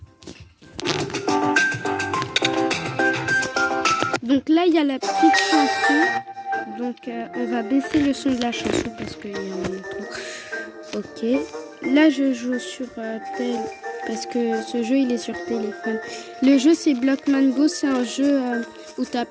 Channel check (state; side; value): identical; both; correlation 1.00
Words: Donc là il y a la petite chanson. Donc on va baisser le son de la chanson parce qu'il y en a trop. Ok. Là je joue sur tel parce que ce jeu il est sur téléphone. Le jeu c'est Blockman Go, c'est un jeu où